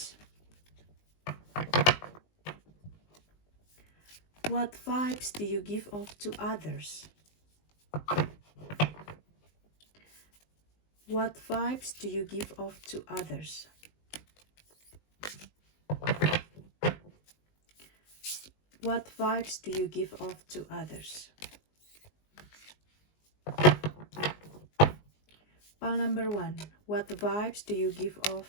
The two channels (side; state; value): right; late; 19 ms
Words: What vibes do you give off to others? What vibes do you give off to others? What vibes do you give off to others? Pile number 1. What vibes do you give